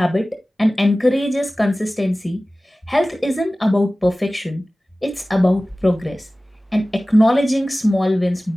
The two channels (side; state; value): both; normal; correlation 0.97